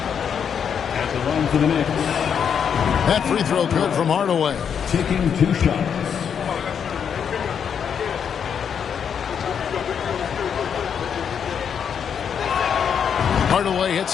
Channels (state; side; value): quieter; right; 7.5 dB